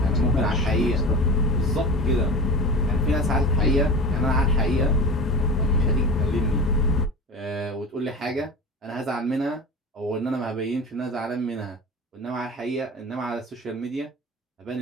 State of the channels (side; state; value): both; normal; correlation 0.31